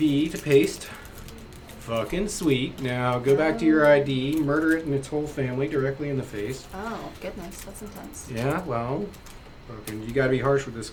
to paste. Fucking sweet. Now go back to your ID, murder it and its whole family directly in the face. Oh goodness, that's intense. Yeah, well, fucking, you gotta be harsh with this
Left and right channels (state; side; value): identical; both; correlation 1.00